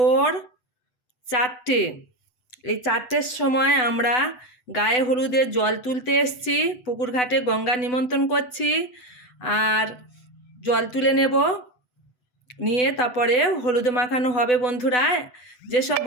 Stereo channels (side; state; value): right; late; 8.0 ms